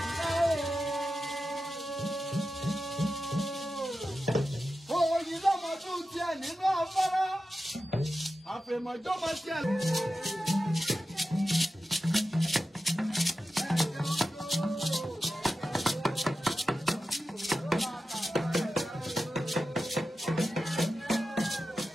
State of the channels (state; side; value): normal; both; correlation 0.92